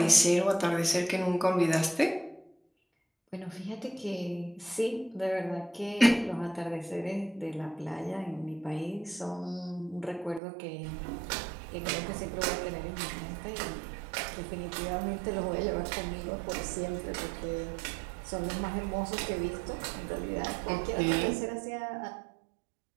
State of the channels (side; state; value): left; drops out; at 10.4 s